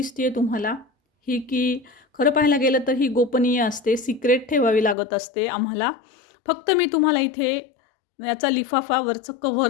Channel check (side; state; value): right; drops out; at 5.0 s